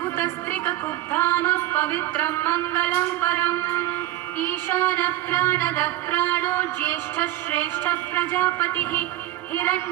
पवित्रं मङ्गलं परम् ईशानः प्राणदः प्राणो ज्येष्ठः श्रेष्ठः प्रजापतिः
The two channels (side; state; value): left; quieter; 14.9 dB